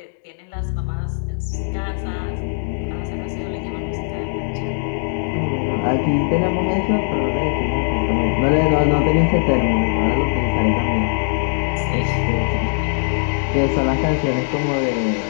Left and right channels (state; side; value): silent; right; 66 dB below the other